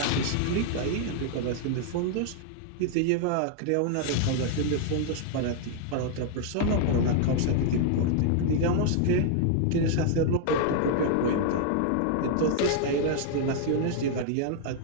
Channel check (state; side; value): different; both; correlation 0.00